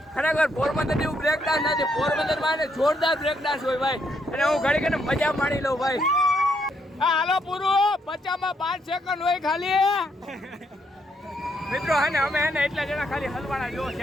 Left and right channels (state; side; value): normal; both; correlation 0.75